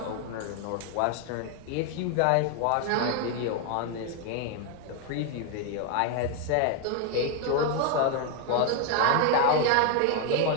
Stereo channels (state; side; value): different; both; correlation 0.01